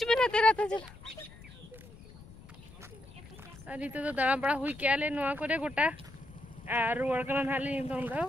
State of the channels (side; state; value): left; noise; rumble, 19 dB below the sound